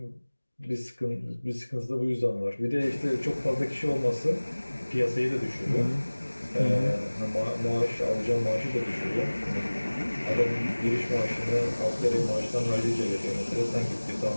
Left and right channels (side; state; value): both; inverted; correlation -1.00